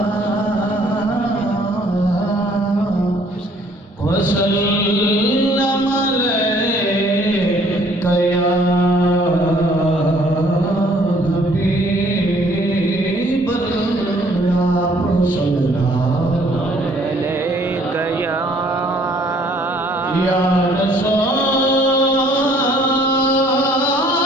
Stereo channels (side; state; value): both; normal; correlation 0.60